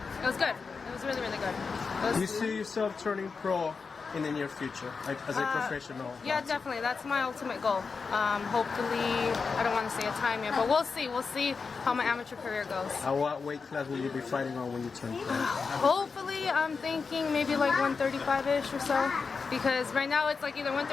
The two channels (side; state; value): right; quieter; 5.0 dB